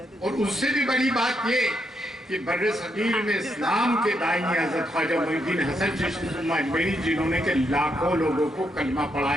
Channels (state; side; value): normal; both; correlation 0.79